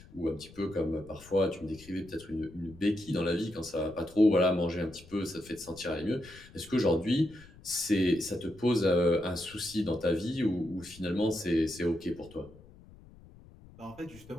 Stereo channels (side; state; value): left; noise; rumble, 21 dB below the sound